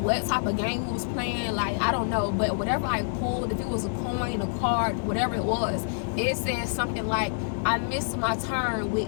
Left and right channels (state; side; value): silent; right; digital silence